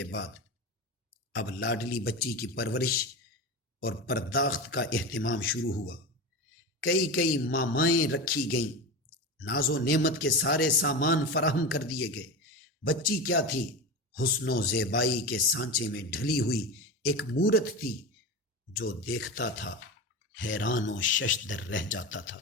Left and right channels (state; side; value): normal; both; correlation 0.23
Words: بعد اب لاڈلی بچی کی پرورش اور پرداخت کا اہتمام شروع ہوا۔ کئی مامائیں رکھی گئیں، ناز و نعمت کے سارے سامان فراہم کر دیے گئے۔ بچی کیا تھی؟ حسن و زیبائی کے سانچے میں ڈھلی ہوئی ایک مورت تھی۔ جو دیکھتا تھا حیران و ششدر رہ جاتا تھا۔